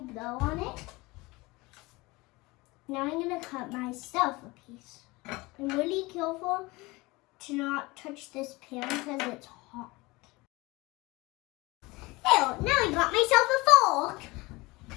blow on it? Now I'm gonna cut myself a piece. I'm really careful to not touch this pan because it's hot. Ew, now I got myself a fork.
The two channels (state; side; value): quieter; right; 22.5 dB